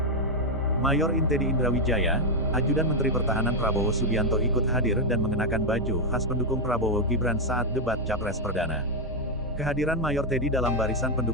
Mayor Teddy Indrawijaya, ajudan Menteri Pertahanan Prabowo Subianto ikut hadir dan mengenakan baju khas pendukung Prabowo Gibran saat debat Capres Perdana. Kehadiran Mayor Teddy dalam barisan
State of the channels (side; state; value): both; normal; correlation 0.02